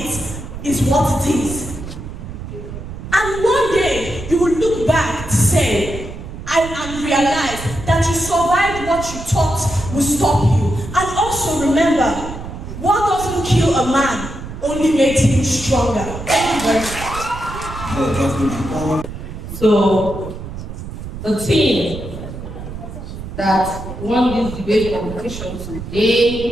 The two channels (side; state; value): right; noise; rumble, 10 dB below the sound